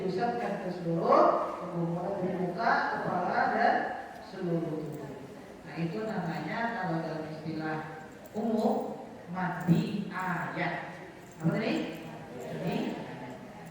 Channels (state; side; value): identical; both; correlation 1.00